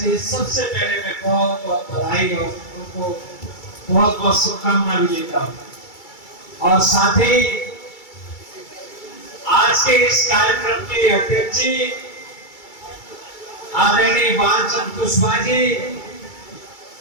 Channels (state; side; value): late; right; 2.3 ms